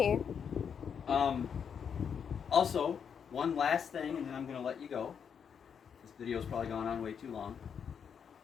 Also, one last thing, and then I'm going to let you go. This video's probably gone on way too long.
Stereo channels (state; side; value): quieter; right; 7.3 dB